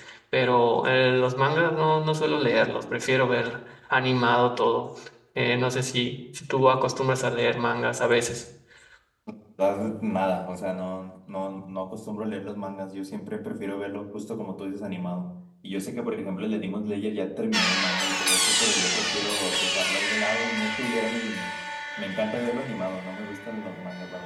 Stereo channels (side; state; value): both; identical; correlation 1.00